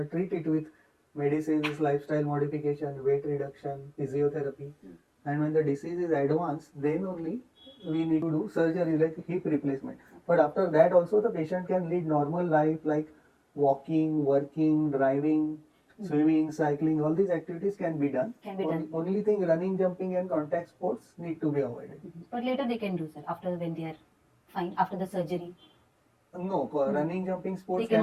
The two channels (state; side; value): identical; both; correlation 1.00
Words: treat it with medicines, lifestyle modification, weight reduction, physiotherapy. And when the disease is advanced, then only we need to do surgery like hip replacement. But after that also the patient can lead normal life like walking, working, driving, swimming, cycling, all these activities can be done. Only thing, running, jumping and contact sports need to be avoided. But later they can do, sir, after when they are fine, after the surgery. No, running, jumping sports